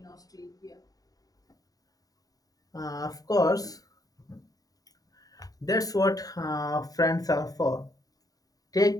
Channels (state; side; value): late; right; 0.18 ms